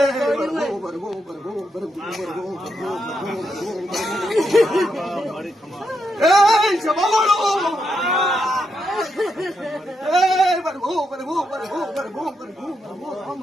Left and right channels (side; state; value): both; normal; correlation 0.82